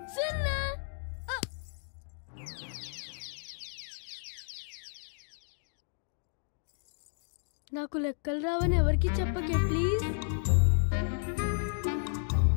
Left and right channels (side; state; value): right; silent; digital silence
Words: 0. నాకు లెక్కలు రావని ఎవరికి చెప్పకే ప్లీజ్.